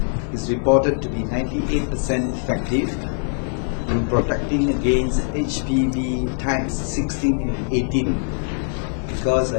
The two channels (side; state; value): right; silent; digital silence